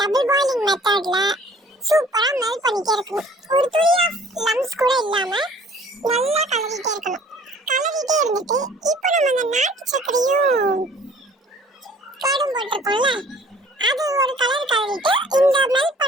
டபுள் பாயிலிங் மெத்தட்ல சூப்பரா மெல்ட் பண்ணிட்டே இருக்கணும். ஒரு துளி ஆஃப் லம்ஸ் கூட இல்லாம நல்லா கலரிட்டே இருக்கணும். கலரிட்டே இருந்துட்டு இப்போ நம்ம அந்த நாட்டு சக்கரையும் கடும் போட்டிருக்கோம்ல, அது ஒரு கலர் கலரிட்டு இந்த மெல்ட்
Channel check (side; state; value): both; normal; correlation 0.52